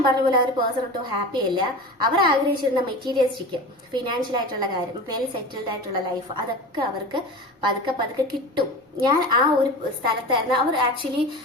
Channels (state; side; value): normal; both; correlation 0.31